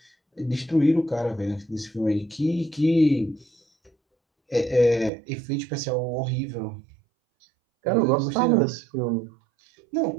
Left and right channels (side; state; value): left; drops out; at 5.1 s